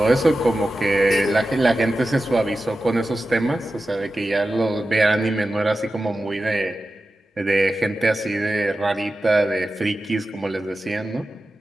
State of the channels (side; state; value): both; normal; correlation 0.93